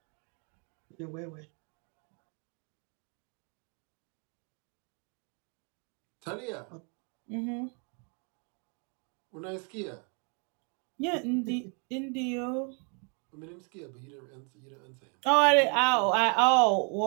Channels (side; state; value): left; quieter; 37.5 dB